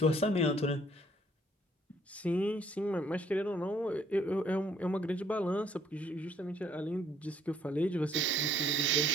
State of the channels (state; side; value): normal; both; correlation 0.63